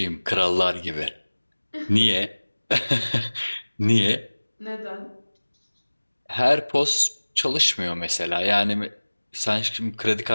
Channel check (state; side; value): inverted; both; correlation -1.00